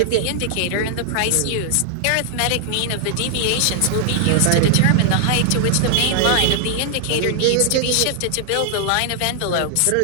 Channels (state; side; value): different; both; correlation -0.01